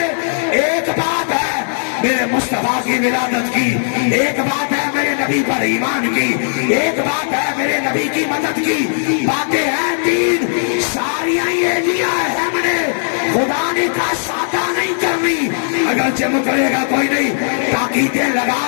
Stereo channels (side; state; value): right; silent; digital silence